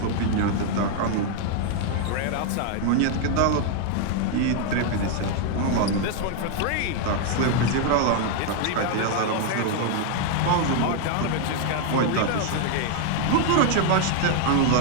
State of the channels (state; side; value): different; both; correlation 0.00